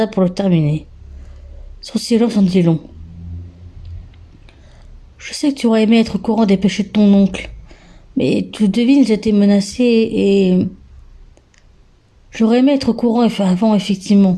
pour le terminer. Son silence en dit long. Je sais que tu aurais aimé être au courant des péchés de ton oncle, mais tu devines, j'étais menacée et... J'aurais aimé être au courant avant,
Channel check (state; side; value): identical; both; correlation 1.00